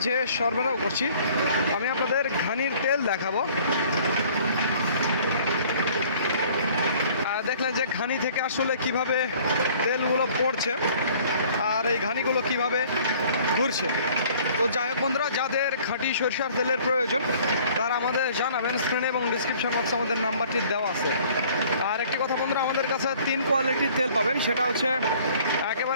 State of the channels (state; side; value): inverted; both; correlation -0.54